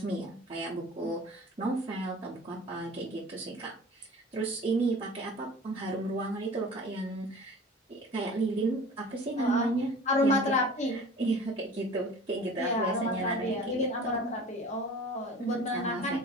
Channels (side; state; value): both; normal; correlation 0.42